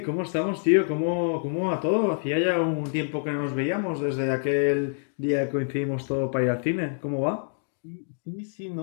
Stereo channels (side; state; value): right; silent; digital silence